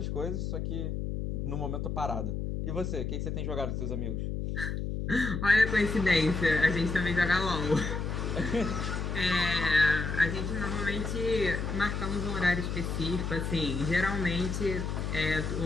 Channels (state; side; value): noise; left; hum, 3 dB below the sound